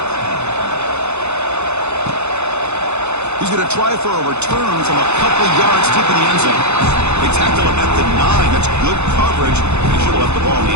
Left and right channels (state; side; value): late; left; 0.81 ms